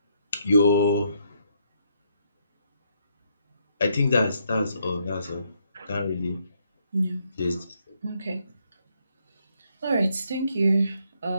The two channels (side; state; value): both; inverted; correlation -0.74